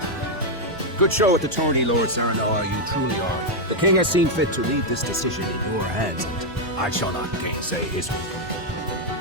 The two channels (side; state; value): both; normal; correlation 0.01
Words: Good show at the tourney, Lord Serenoa, you truly are. The king has seen fit to leave this decision in your hands, and I shall not gainsay his will.